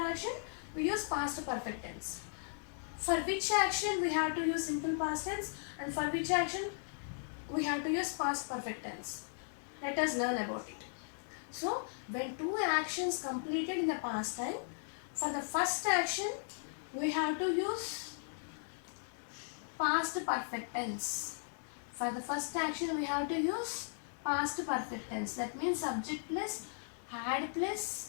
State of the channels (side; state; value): right; silent; digital silence